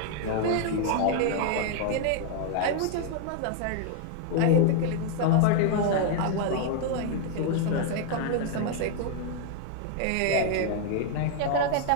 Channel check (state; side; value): different; both; correlation 0.00